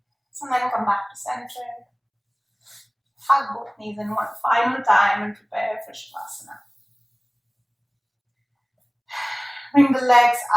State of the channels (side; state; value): both; identical; correlation 1.00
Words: So then come back to center. Hug both knees in one final time and prepare for Shavasana. Bring the legs